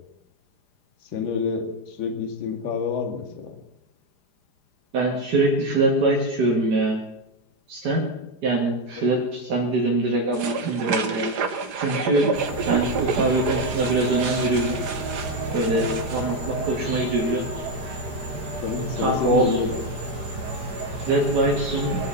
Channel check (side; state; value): left; late; 4.9 ms